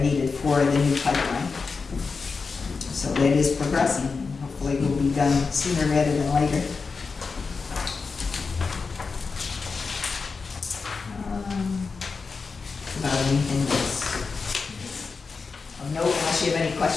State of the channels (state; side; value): quieter; right; 4.7 dB